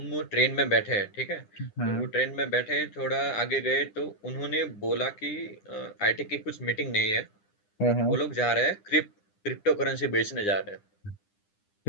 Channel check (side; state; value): right; late; 9.9 ms